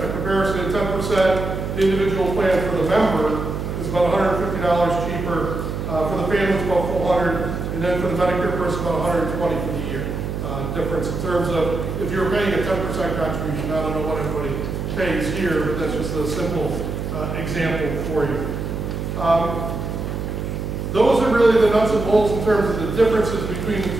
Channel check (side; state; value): right; noise; hum, 4 dB below the sound